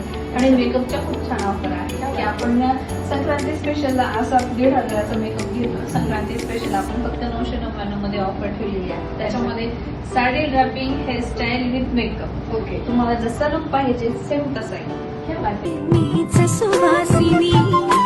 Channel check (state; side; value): identical; both; correlation 1.00